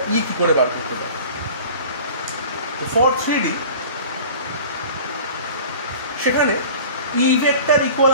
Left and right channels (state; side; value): inverted; both; correlation -0.41